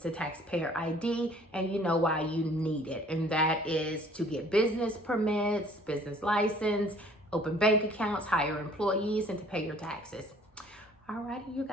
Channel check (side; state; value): both; normal; correlation 0.55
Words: a taxpayer ID, and you know why you need it. And that is to get business permits, business license, open bank accounts, hire employees, and to pay your taxes. Alrighty, you